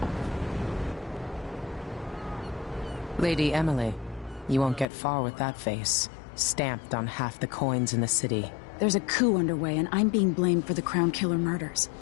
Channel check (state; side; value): drops out; right; at 4.9 s